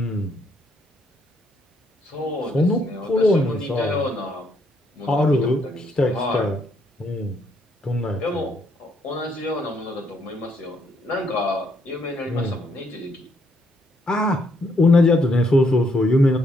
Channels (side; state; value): both; normal; correlation 0.73